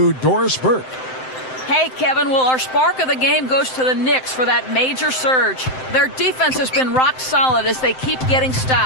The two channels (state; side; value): late; right; 7.7 ms